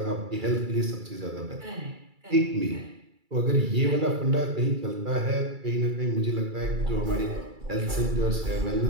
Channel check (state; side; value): late; left; 2.3 ms